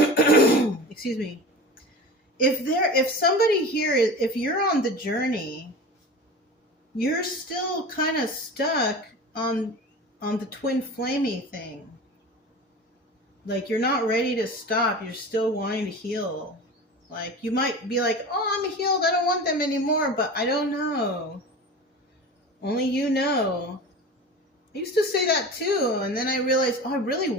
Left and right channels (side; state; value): both; normal; correlation 0.34